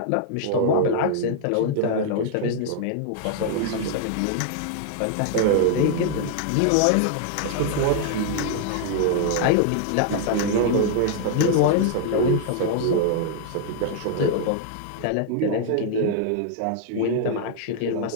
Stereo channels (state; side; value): different; both; correlation 0.00